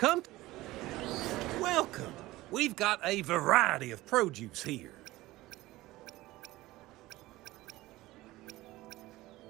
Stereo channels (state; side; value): quieter; left; 18.1 dB